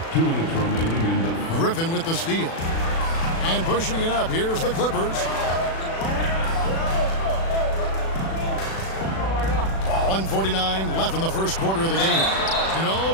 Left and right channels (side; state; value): right; late; 36 ms